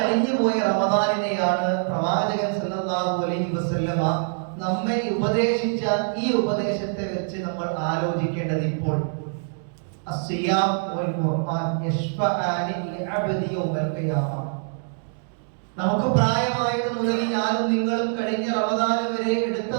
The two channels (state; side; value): silent; left; digital silence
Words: പോയ റമദാനിനെയാണ് പ്രവാചകൻ സല്ലല്ലാഹു അലൈഹി വസല്ലമ നമ്മെ ഉപദേശിച്ച ഈ ഉപദേശത്തെ വെച്ച് നമ്മൾ ആലോചിക്കേണ്ടത് ഇപ്പോൾ അസ്സിയാം വൽ ഖുർആൻ യശ്ഫഅനി ലിഅബ്ദി യൗമൽ ഖിയാമ. നമുക്ക് പ്രായമായത് മുതൽ ഞാനും നിങ്ങളും കഴിഞ്ഞ റമദാൻ വരെ എടുത്ത